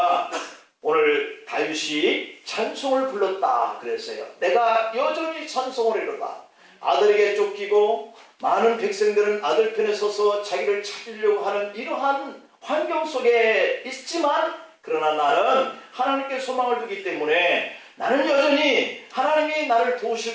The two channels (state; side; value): identical; both; correlation 1.00